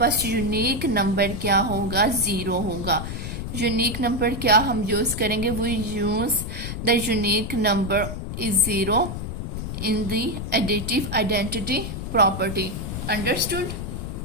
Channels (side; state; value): left; noise; rumble, 5 dB below the sound